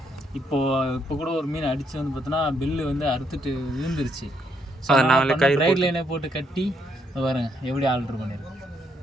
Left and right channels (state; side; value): normal; both; correlation 0.74